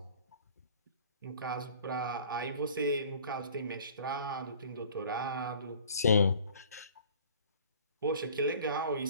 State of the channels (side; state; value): both; inverted; correlation -0.49